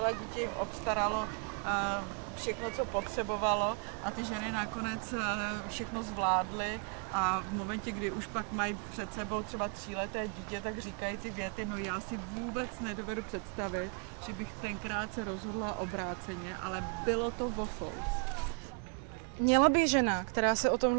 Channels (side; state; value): left; quieter; 38.2 dB